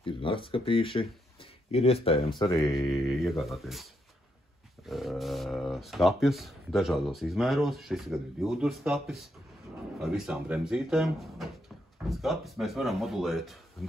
Ir naktskapīši, ir iespējams arī iegādāties skapjus dažādos izmēros. Šis gan ir 2 duru skapis ar visām bremzītēm. Skapis mēs varam modulēt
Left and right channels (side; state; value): both; normal; correlation 0.79